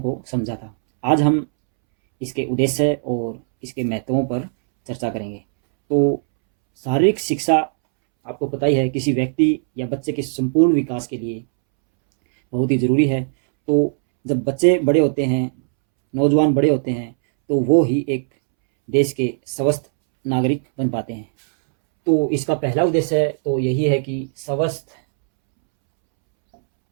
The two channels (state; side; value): silent; left; 66 dB below the other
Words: समझा था। आज हम इसके उद्देश्य और इसके महत्वों पर चर्चा करेंगे। तो शारीरिक शिक्षा आपको पता ही है, किसी व्यक्ति या बच्चे के संपूर्ण विकास के लिए बहुत ही ज़रूरी है। तो जब बच्चे बड़े होते हैं, नौजवान बड़े होते हैं, तो वो ही एक देश के स्वस्थ नागरिक बन पाते हैं। तो इसका पहला उद्देश्य तो यही है कि स्वस्थ